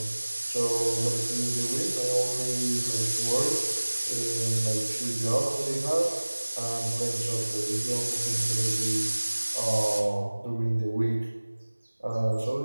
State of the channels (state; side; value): inverted; both; correlation -1.00